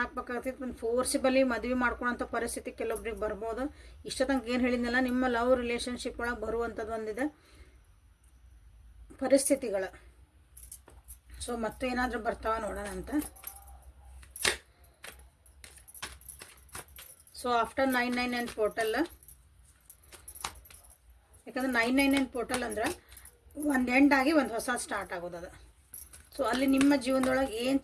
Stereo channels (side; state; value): both; identical; correlation 1.00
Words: ಒಂದು ಫೋರ್ಸಿಬಲಿ ಮದುವೆ ಮಾಡ್ಕೊಳೋಂಥ ಪರಿಸ್ಥಿತಿ ಕೆಲವೊಬ್ರಿಗೆ ಬರ್ಬೋದು. ಇಷ್ಟ ತನಕ ಏನು ಹೇಳಿದ್ನಲ್ಲ, ನಿಮ್ಮ ಲವ್ ರಿಲೇಷನ್ಶಿಪ್ ಒಳಗೆ ಬರುವಂಥದ್ದು ಒಂದಿದೆ ಪರಿಸ್ಥಿತಿಗಳು. ಸೊ ಮತ್ತೆ ಏನಾದರೂ ಬರ್ತಾವ ನೋಡೋಣ ಅಂತ. ಸೊ ಆಫ್ಟರ್ 999 ಪೋರ್ಟಲ್, ಯಾಕಂದ್ರೆ 999 ಪೋರ್ಟಲ್ ಅಂದ್ರೆ ಒಂದು ಎಂಡ್ ಆಗಿ ಒಂದು ಹೊಸ ಸ್ಟಾರ್ಟ್ ಆಗೋದು. ಸೊ ಅಲ್ಲಿ ನಿಮ್ಮ ಜೀವನದೊಳಗೆ ಏನು